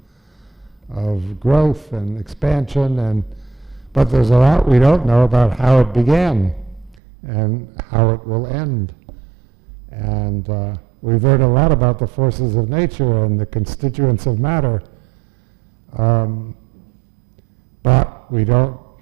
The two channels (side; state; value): left; drops out; at 7.0 s